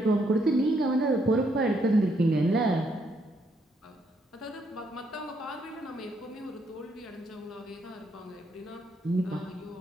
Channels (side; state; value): both; normal; correlation 0.74